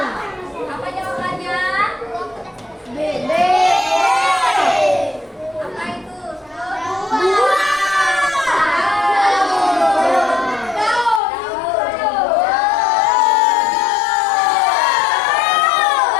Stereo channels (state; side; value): drops out; right; at 11.2 s